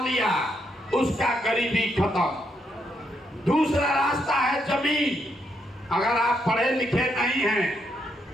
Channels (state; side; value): normal; both; correlation 0.78